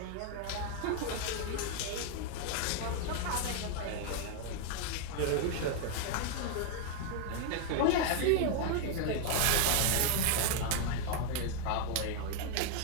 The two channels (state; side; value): different; both; correlation 0.01